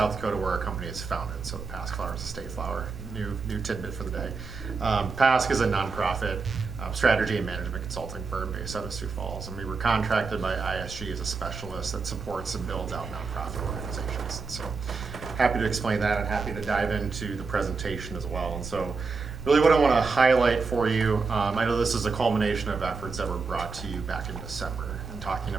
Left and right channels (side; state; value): left; quieter; 4.6 dB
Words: Dakota, where our company is founded. So the PASC flower is a state flower. New tidbit for the day. PASC is a nonprofit strategy and management consulting firm based out of Sioux Falls, and we were contracted by ISG as a specialist that supports and builds out nonprofit organizations. So happy to explain that and happy to dive into the presentation as well. And so really what I want to highlight for you, I know this is a culmination of efforts that were brought to you back in December, and talking